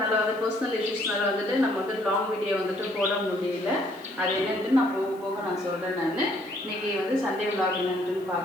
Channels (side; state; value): left; noise; hiss, 27 dB below the sound